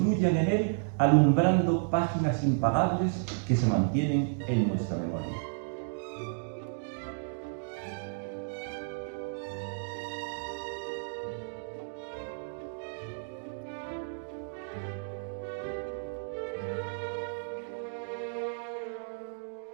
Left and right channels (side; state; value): left; silent; digital silence